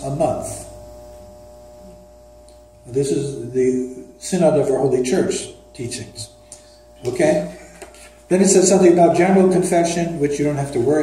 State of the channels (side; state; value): both; identical; correlation 1.00